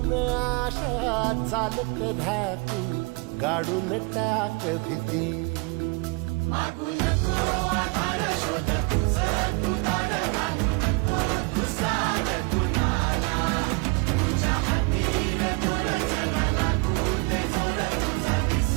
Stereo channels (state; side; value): quieter; left; 29.6 dB